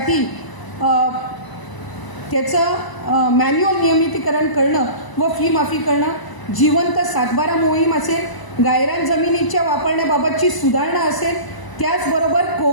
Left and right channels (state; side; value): late; right; 1.0 ms